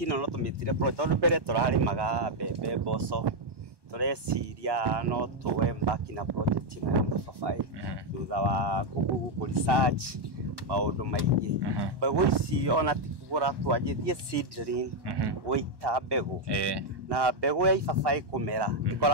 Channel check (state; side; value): late; left; 1.1 ms